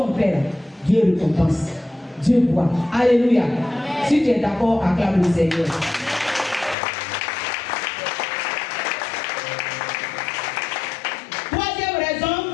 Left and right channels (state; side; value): drops out; right; at 6.8 s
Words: fait là, Dieu récompense. Dieu voit. Alléluia. Amen. Si tu es d'accord, acclame le Seigneur. Troisième